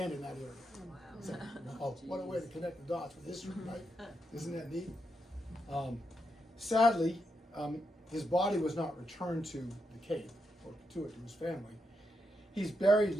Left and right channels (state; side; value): normal; both; correlation 0.83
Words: in that area. Wow. So, oh, what a way to connect the dots with history, right? Isn't that neat? Sadly, his body was not returned to the Cape or to his family. He's buried